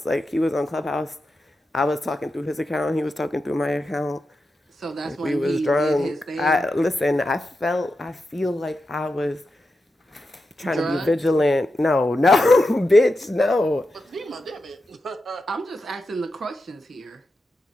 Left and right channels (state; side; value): normal; both; correlation 0.89